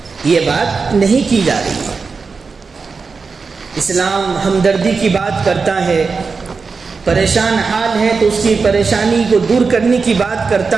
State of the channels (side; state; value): left; quieter; 4.7 dB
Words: یہ بات نہیں کی جا رہی ہے۔ اسلام ہمدردی کی بات کرتا ہے، پریشان حال ہے تو اس کی پریشانی کو دور کرنے کی بات